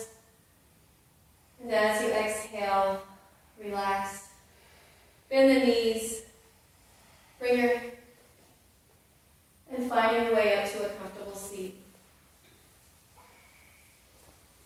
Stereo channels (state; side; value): identical; both; correlation 1.00